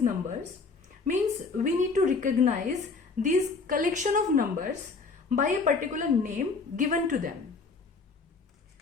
numbers, means we need to recognize these collection of numbers by a particular name given to them.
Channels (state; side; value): quieter; right; 4.3 dB